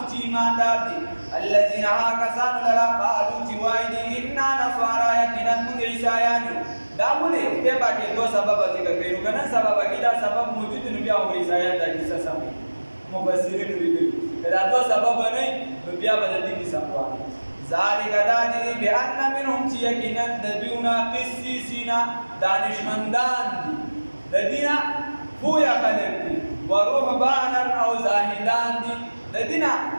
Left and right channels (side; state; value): both; inverted; correlation -1.00